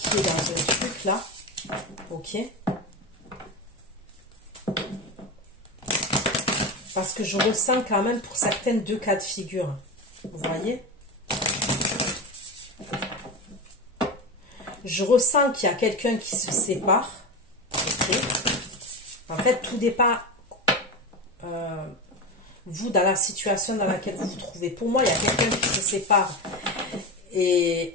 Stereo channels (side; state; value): both; normal; correlation 0.20